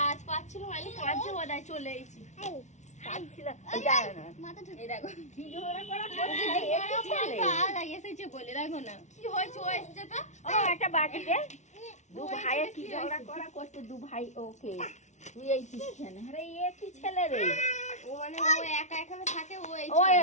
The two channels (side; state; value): right; late; 0.34 ms